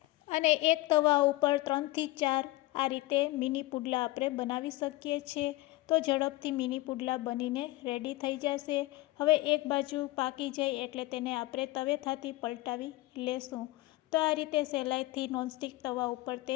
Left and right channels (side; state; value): right; quieter; 18.8 dB